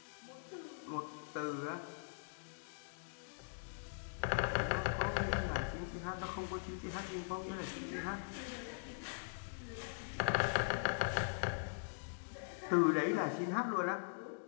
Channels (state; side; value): silent; right; digital silence